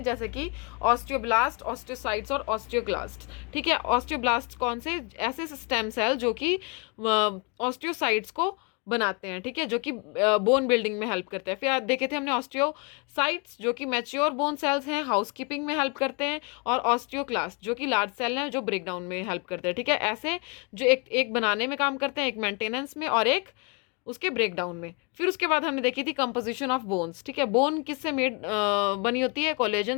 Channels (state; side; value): quieter; right; 32.5 dB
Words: जैसे कि ऑस्टियोब्लास्ट, ऑस्टियोसाइट्स और ऑस्टियोक्लास्ट। ठीक है, ऑस्टियोब्लास्ट कौन से? ऐसे स्टेम सेल जो कि ऑस्टियोसाइट्स को बनाते हैं। ठीक है, जो कि बोन बिल्डिंग में हेल्प करते हैं। फिर देखे थे हमने ऑस्टियोसाइट्स जो कि मैच्योर बोन सेल्स हैं, हाउसकीपिंग में हेल्प करते हैं, और ऑस्टियोक्लास्ट जो कि लार्ज सेल हैं जो ब्रेक डाउन में हेल्प करते हैं। ठीक है, ऐसे जो एक बनाने में काम करते हैं, एक मेंटेनेंस में और एक उसके ब्रेक डाउन में। फिर उसके बाद हमने देखी थी कंपोजिशन ऑफ बोन्स। ठीक है, बोन किससे मेड बनी होती है?